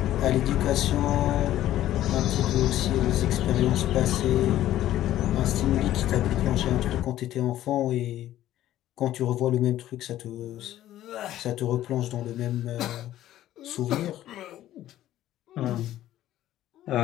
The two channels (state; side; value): quieter; right; 13.3 dB